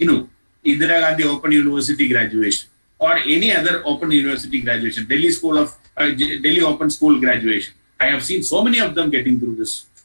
Indira Gandhi Open University graduation, or any other Open University graduation, Delhi Open School graduation. I have seen so many of them getting through this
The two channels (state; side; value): inverted; both; correlation -1.00